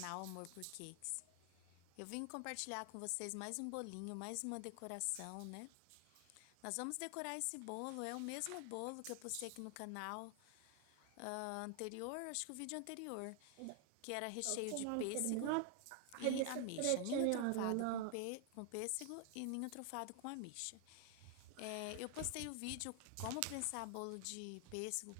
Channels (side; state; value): both; different; correlation 0.00